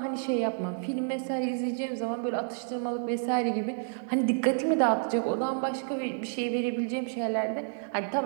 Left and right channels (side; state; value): left; silent; 57 dB below the other